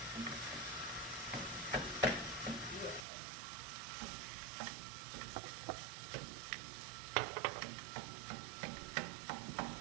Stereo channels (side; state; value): left; drops out; at 3.1 s